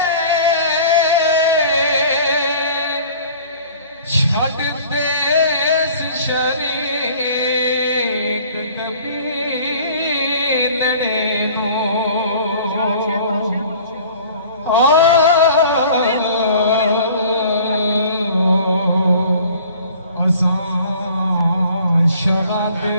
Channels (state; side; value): inverted; both; correlation -0.49